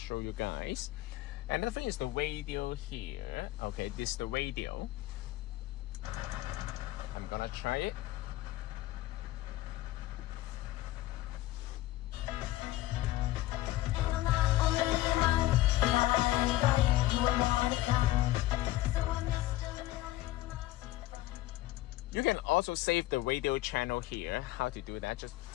you guys. Another thing is the radio here. Okay, this is the radio. I'm gonna try it. You can also save the radio channel here. How to do that? Just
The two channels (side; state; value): right; quieter; 16.0 dB